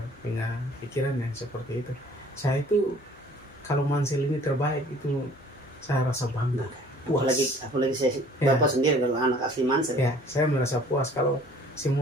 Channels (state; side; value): normal; both; correlation 0.53